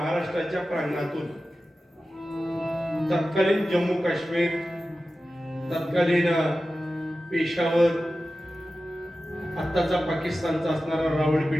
प्रांगणातून तत्कालीन जम्मू काश्मीर, तत्कालीन पेशावर, आत्ताचा पाकिस्तानचा असणारा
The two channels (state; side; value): normal; both; correlation 0.94